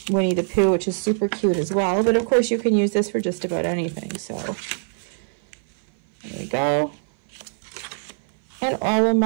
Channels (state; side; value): silent; left; 58 dB below the other